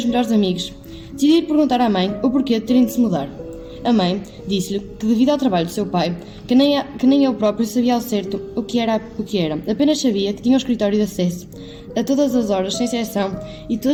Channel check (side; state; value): both; identical; correlation 1.00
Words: melhores amigos. Decidiu perguntar à mãe o porquê de terem de se mudar. A mãe disse-lhe que, devido ao trabalho do seu pai, que nem ele próprio sabia ao certo o que era, apenas sabia que tinha um escritório de acesso a todas as horas, sem exceção, e